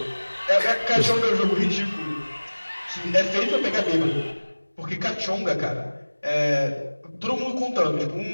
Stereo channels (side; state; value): both; inverted; correlation -1.00